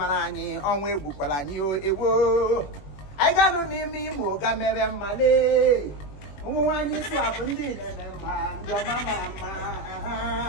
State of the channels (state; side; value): late; right; 21 ms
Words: onwe bukwala nyi ewo. I ganu n'ime Imo ga mere male. Nwanyi eswa bundi nemema ndi oma